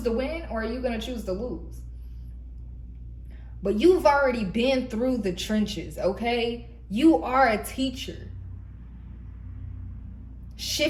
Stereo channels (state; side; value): identical; both; correlation 1.00